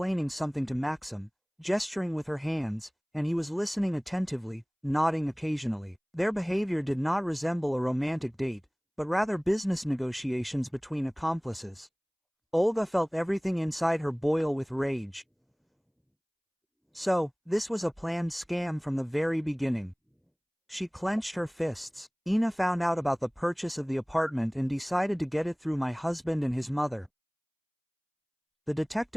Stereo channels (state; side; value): identical; both; correlation 1.00